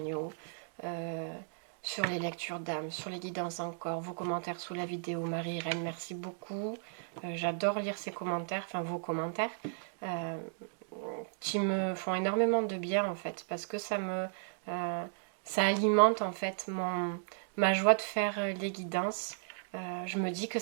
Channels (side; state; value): left; silent; digital silence